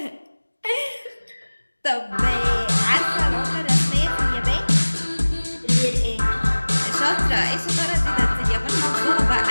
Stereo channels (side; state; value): both; inverted; correlation -1.00